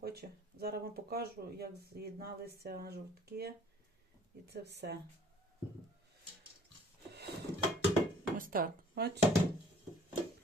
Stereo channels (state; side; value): normal; both; correlation 0.55